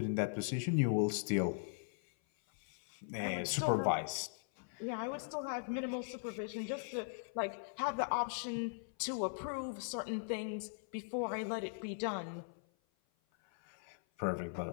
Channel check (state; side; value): silent; right; 51 dB below the other